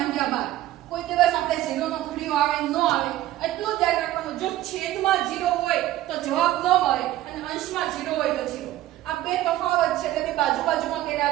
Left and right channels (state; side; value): quieter; left; 14.7 dB